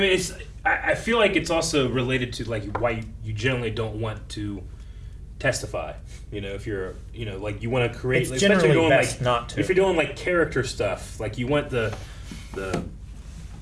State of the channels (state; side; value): identical; both; correlation 1.00